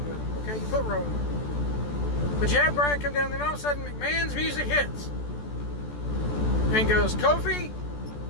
with him, okay? You put Rowan with him. But you have Bryan come down, then all of a sudden McMahon's music hits. And goes, Kofi,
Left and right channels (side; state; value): right; late; 14 ms